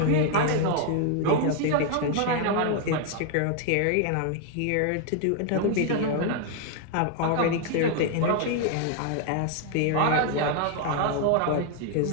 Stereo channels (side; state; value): both; different; correlation 0.00